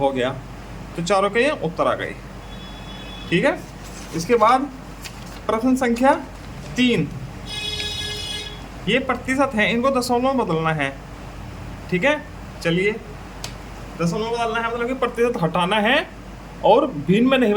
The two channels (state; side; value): identical; both; correlation 1.00